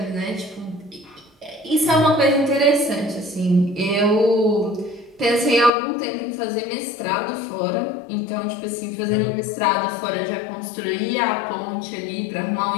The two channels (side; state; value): right; drops out; at 5.7 s